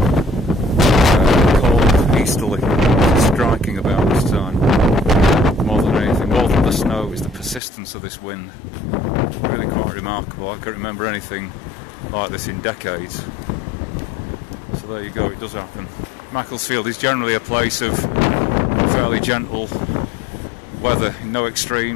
cold easterly, striking about this time. More than anything, more than the snow, is the persistence of this wind. Really quite remarkable. I can't remember anything like this in decades. So there you go, it does happen. Macclesfield is generally a place of fairly gentle weather, no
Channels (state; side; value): drops out; right; at 7.6 s